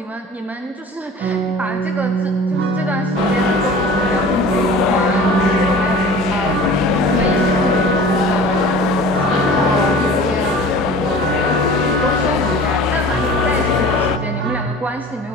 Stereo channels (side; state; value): both; normal; correlation 0.41